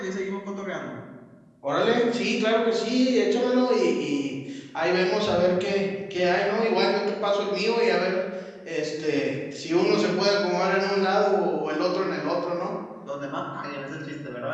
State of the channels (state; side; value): identical; both; correlation 1.00